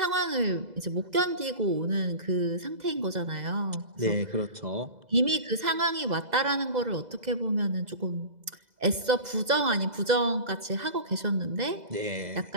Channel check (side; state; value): left; late; 2.0 ms